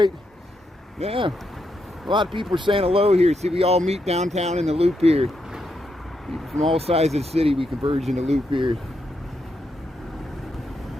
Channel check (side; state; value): both; normal; correlation 0.81